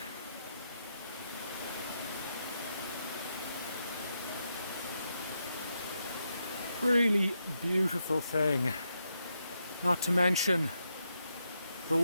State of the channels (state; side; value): inverted; both; correlation -0.82